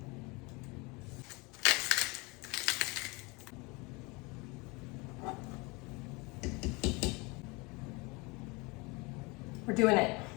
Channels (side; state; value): right; quieter; 26.7 dB